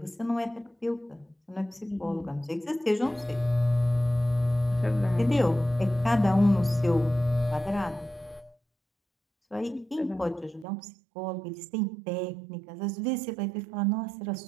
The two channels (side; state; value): left; drops out; at 10.7 s